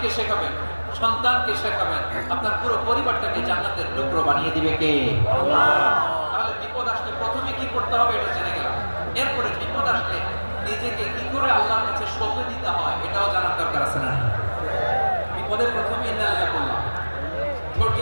শেখাবেন, সন্তানকে শেখাবেন, আপনার পুরো পরিবারটাকে জান্নাতের টুকরো বানিয়ে দিবে কে? আল্লাহ। তাহলে বিপদ আসলে প্রথমে কি করতে হবে এটা জেনে গেলাম। এরপরে বিপদ আসলে নিজেকে কি করে আল্লাহর কাছে সঁপে দিতে হয় এটাও জানার দরকার আছে না? বিপদের প্রথমে ইন্নালিল্লাহ বললাম, ধৈর্য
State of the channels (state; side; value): inverted; both; correlation -1.00